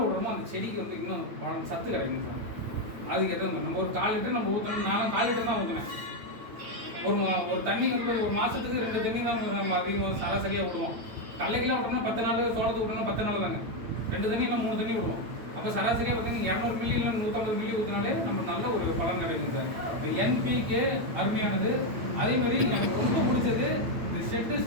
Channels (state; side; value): late; left; 8.9 ms